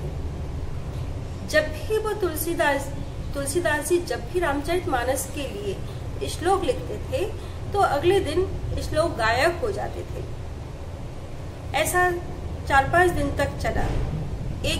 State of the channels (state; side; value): identical; both; correlation 1.00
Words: जब भी वो तुलसीदास जी जब भी रामचरितमानस के लिए श्लोक लिखते थे तो अगले दिन श्लोक गायब हो जाते थे। ऐसा 4-5 दिन तक चला।